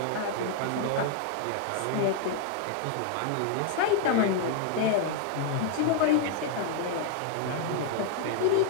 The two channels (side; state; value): both; different; correlation 0.00